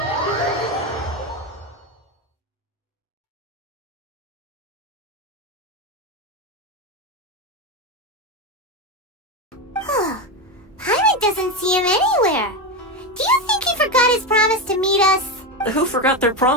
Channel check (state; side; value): normal; both; correlation 0.14